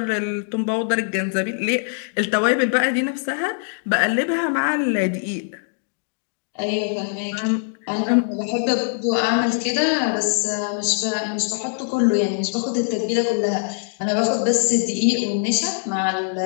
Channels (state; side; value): silent; right; digital silence